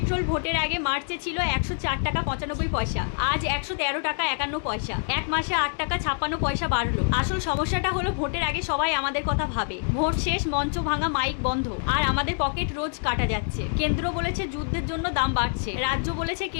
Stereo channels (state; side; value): silent; right; digital silence